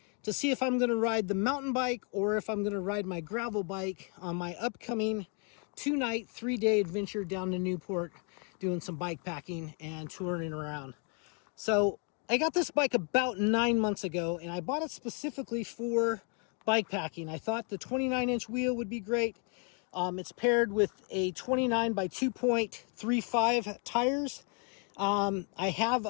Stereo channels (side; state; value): right; quieter; 37.6 dB